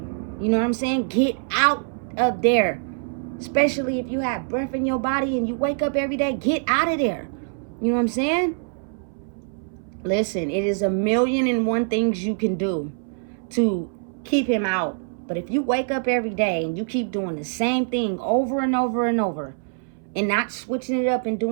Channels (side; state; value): left; silent; 63 dB below the other